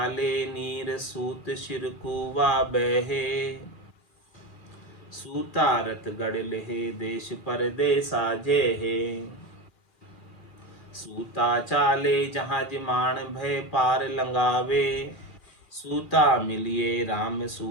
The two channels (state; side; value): late; right; 2.4 ms